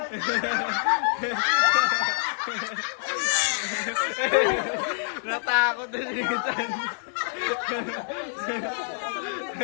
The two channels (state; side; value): silent; right; digital silence